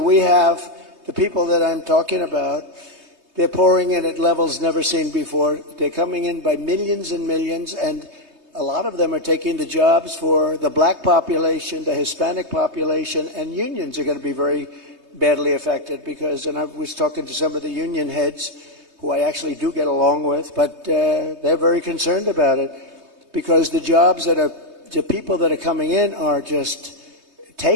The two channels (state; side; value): late; left; 3.2 ms